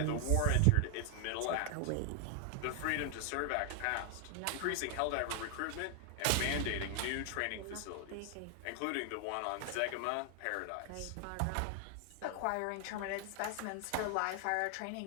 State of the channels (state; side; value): different; both; correlation 0.00